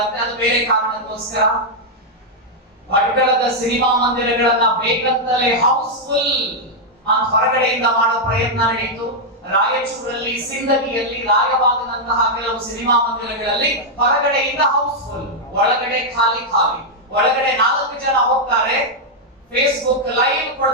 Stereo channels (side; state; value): both; normal; correlation -0.03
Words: ಅದು ಬೇರೆ ಕಾರಣಕ್ಕೋಸ್ಕರ. ಭಟ್ಕಳದ ಸಿನಿಮಾ ಮಂದಿರಗಳನ್ನ ಬೇಕಂತಲೇ ಹೌಸ್ಫುಲ್ ಅಂತ ಹೊರಗಡೆಯಿಂದ ಮಾಡೋ ಪ್ರಯತ್ನ ನಡೆಯಿತು. ರಾಯಚೂರಲ್ಲಿ, ಸಿಂದಗಿಯಲ್ಲಿ, ರಾಯಬಾಗದಂತಹ ಕೆಲವು ಸಿನಿಮಾ ಮಂದಿರಗಳಲ್ಲಿ ಹೊರಗಡೆಯಿಂದ ಹೌಸ್ಫುಲ್, ಒಳಗಡೆ ಖಾಲಿ. ಒಳಗಡೆ 4 ಜನ ಹೋಗ್ತಾರೆ, ಫೇಸ್ಬುಕ್ ಲೈವ್